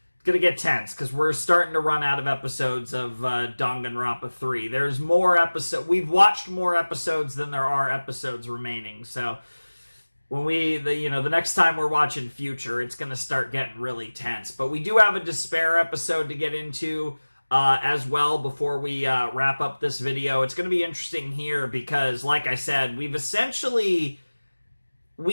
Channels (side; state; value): both; inverted; correlation -1.00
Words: gonna get tense, because we're starting to run out of episodes of Danganronpa 3. There's more episodes. We've watched more episodes than there are episodes remaining. So when the next time we're watching Future, it's gonna start getting really tense. But we do have a Despair episode to get into as well before we wrap up this video. It's gonna be interesting here because, like I said, we